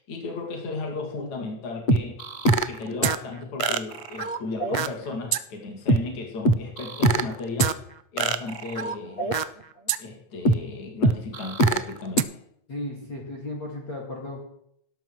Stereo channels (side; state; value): right; late; 8.4 ms